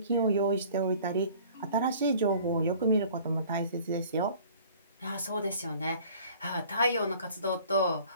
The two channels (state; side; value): inverted; both; correlation -0.50